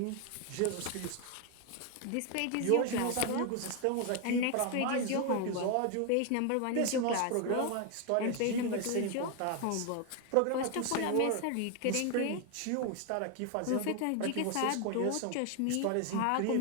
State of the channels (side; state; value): both; different; correlation 0.01